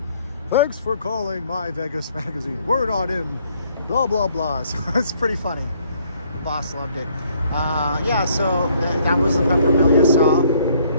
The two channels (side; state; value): both; inverted; correlation -0.64